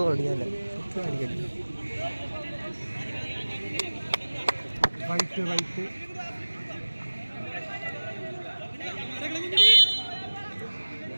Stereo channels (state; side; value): inverted; both; correlation -1.00